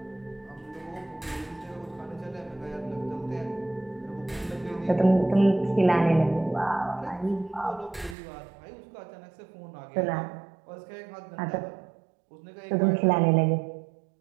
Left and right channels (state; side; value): drops out; left; at 8.2 s